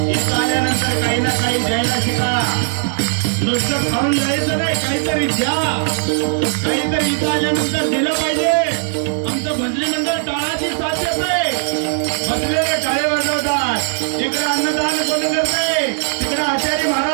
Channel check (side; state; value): left; silent; digital silence